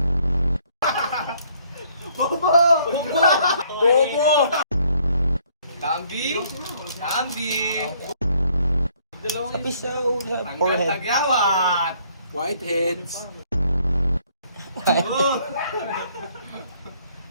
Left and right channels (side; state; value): both; inverted; correlation -0.64